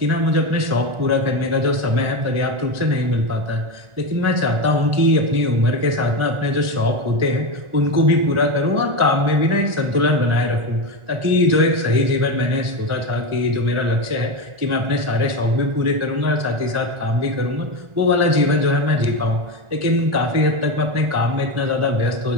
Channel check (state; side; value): late; left; 1.4 ms